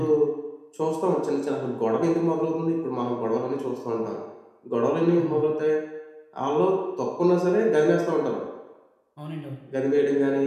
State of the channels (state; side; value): identical; both; correlation 1.00